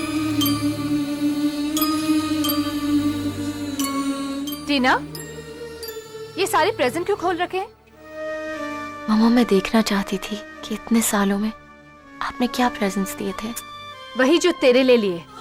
टीना, ये सारे प्रेजेंट क्यों खोल रखे हैं? मामा, मैं देखना चाहती थी कि इतने सालों में आपने क्या प्रेजेंट्स दिए थे। वही जो तेरे ले लिए।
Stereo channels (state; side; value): identical; both; correlation 1.00